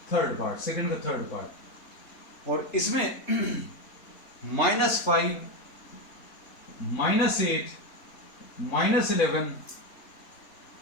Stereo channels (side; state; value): right; late; 3.6 ms